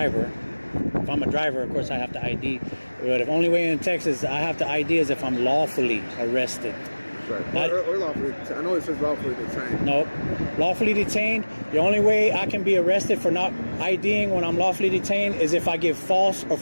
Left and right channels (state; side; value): inverted; both; correlation -1.00